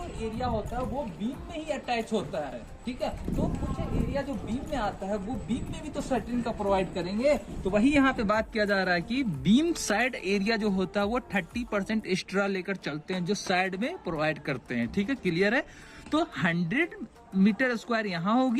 एरिया होता है वो बीम में ही अटैच होता है, ठीक है। तो कुछ एरिया जो बीम में आता है वो बीम में भी तो शटरिंग का प्रोवाइड करेंगे। तो वही यहाँ पे बात किया जा रहा है कि बीम साइड एरिया जो होता है वो 30% एक्स्ट्रा लेकर चलते हैं, जो साइड में प्रोवाइड करते हैं, ठीक है। क्लियर है? तो 100 मीटर स्क्वायर यहाँ हो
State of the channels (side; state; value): both; identical; correlation 1.00